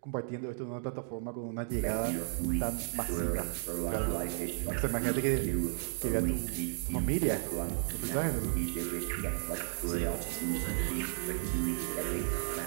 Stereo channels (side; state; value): left; silent; digital silence